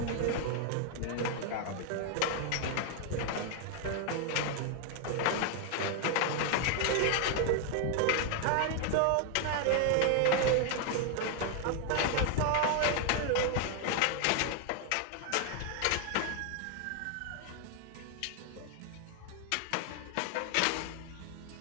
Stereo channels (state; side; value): different; both; correlation 0.00